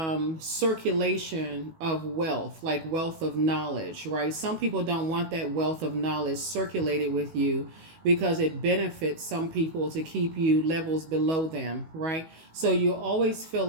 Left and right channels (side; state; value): left; late; 19 ms